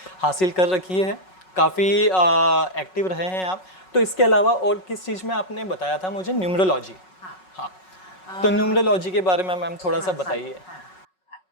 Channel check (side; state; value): right; late; 5.4 ms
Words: हासिल कर रखी है, काफ़ी एक्टिव रहे हैं आप। तो इसके अलावा और किस चीज़ में आपने बताया था मुझे? न्यूमरोलॉजी। हाँ, तो न्यूमरोलॉजी के बारे में मैम थोड़ा सा बताइए।